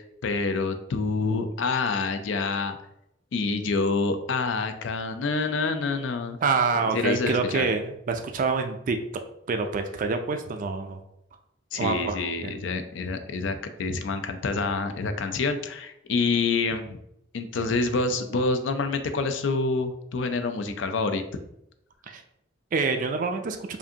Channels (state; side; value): normal; both; correlation 0.19